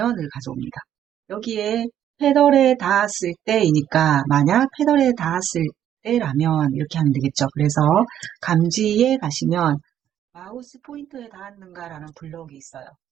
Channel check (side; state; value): left; quieter; 10.6 dB